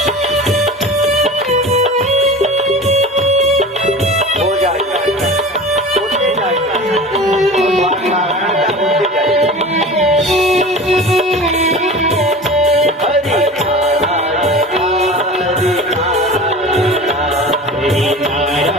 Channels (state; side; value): normal; both; correlation 0.35